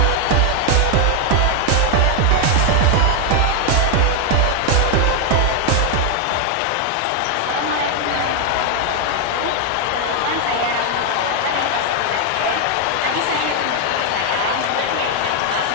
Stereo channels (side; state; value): both; different; correlation 0.00